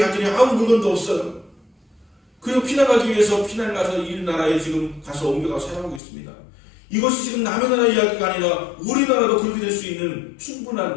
아무 물건도 없어요. 그리고 피난가기 위해서 피난을 가서 이 나라에 지금 가서 옮겨가서 살아가고 있습니다. 이것이 지금 남의 나라 이야기가 아니라 우리나라도 그렇게 될 수 있는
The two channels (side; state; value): right; drops out; at 6.0 s